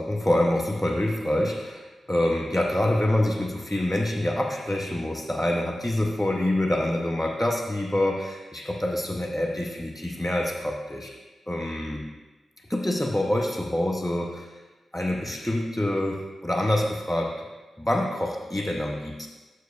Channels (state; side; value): normal; both; correlation 0.95